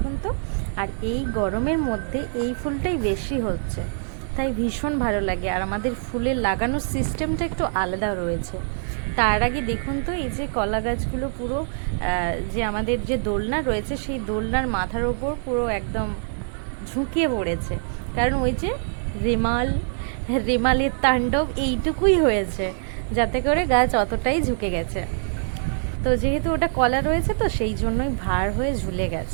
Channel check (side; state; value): left; silent; digital silence